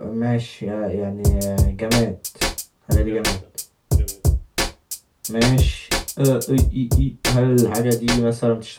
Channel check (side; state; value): both; identical; correlation 1.00